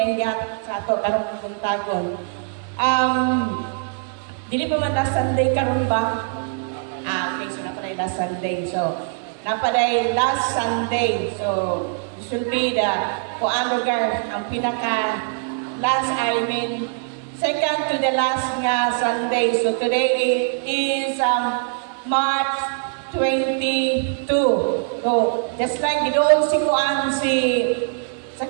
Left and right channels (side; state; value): left; silent; digital silence